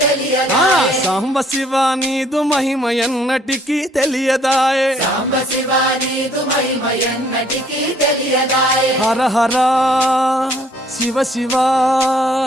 తెలియదాయే సాంబ శివ నీదు మహిమ ఎన్నటికీ తెలియదాయే సాంబ శివ నీదు మహిమ ఎన్నటికీ తెలియదాయే హర హర శివ శివ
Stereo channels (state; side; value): normal; both; correlation 0.62